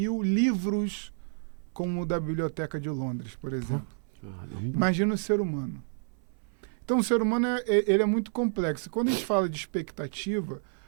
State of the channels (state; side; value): silent; left; 57 dB below the other